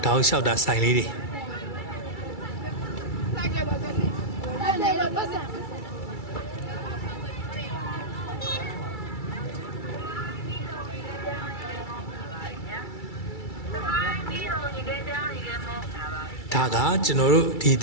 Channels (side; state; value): right; late; 2.3 ms